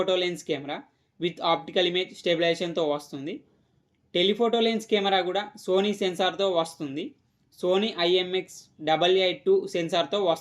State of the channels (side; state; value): both; identical; correlation 1.00